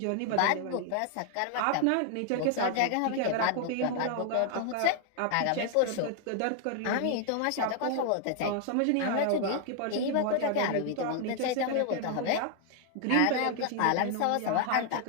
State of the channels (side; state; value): both; different; correlation 0.00